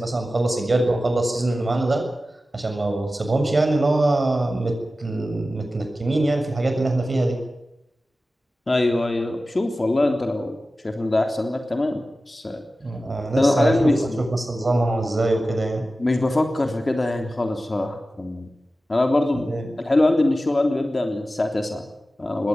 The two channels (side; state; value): both; normal; correlation 0.94